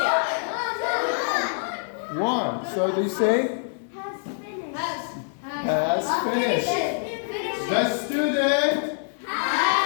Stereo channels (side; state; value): right; silent; 62 dB below the other